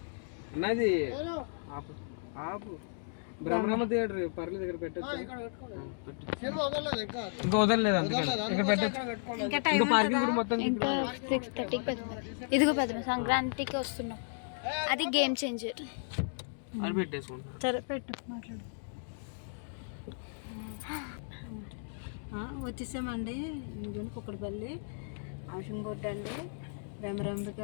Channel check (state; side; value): silent; right; digital silence